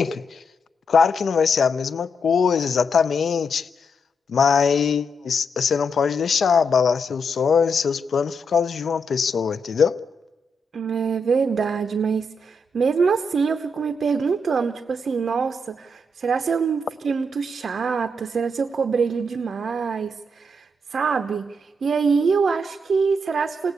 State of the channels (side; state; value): both; normal; correlation 0.80